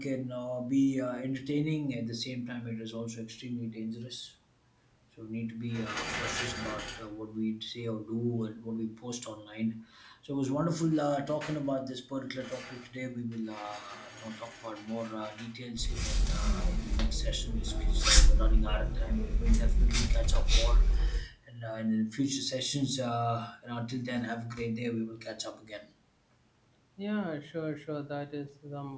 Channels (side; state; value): both; identical; correlation 1.00